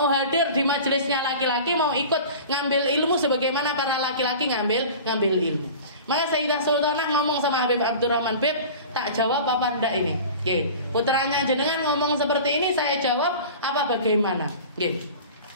hadir di majelisnya laki-laki, mau ikut ngambil ilmu sebagaimana para laki-laki ngambil ilmu. Maka Sayyidah Sultanah ngomong sama Habib Abdurrahman, Beb, tak jawab apa enggak ini? Putranya jenengan ngomong seperti ini, saya jawab apa bagaimana?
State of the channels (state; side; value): inverted; both; correlation -0.38